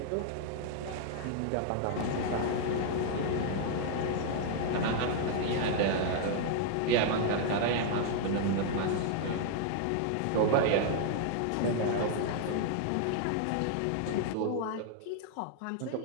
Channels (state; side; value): different; both; correlation -0.01